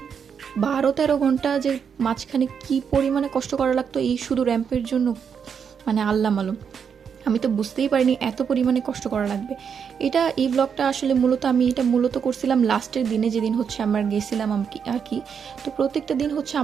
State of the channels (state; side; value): quieter; left; 7.0 dB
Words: 12-13 ঘন্টা যে মাঝখানে কি পরিমাণে কষ্ট করা লাগতো এই শুধু র্যাম্পের জন্য, মানে আল্লাহ মালুম। আমি তো বুঝতেই পারিনি এত পরিমাণে কষ্ট করা লাগবে। এই ব্লগটা আসলে আমি এটা মূলত করছিলাম লাস্টের দিনে, যেদিন হচ্ছে আমরা গেছিলাম আর কি। তো প্রত্যেকটা দিন হচ্ছে